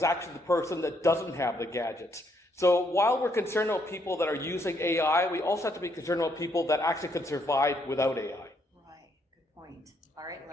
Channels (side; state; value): both; normal; correlation 0.73